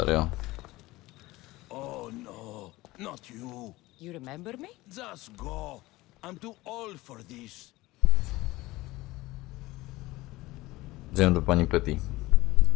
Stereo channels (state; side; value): quieter; right; 19.4 dB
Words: Oh no, not you. You remember me? Just go. I'm too old for this. Idziemy do pani Petty.